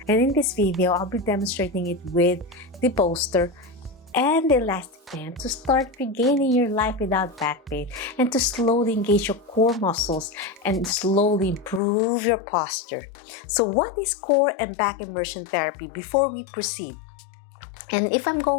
And in this video, I'll be demonstrating it with the Bolster and the elastic band to start regaining your life without back pain and to slowly engage your core muscles and slowly improve your posture. So what is core and back immersion therapy before we proceed? And if I'm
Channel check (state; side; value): drops out; right; at 11.8 s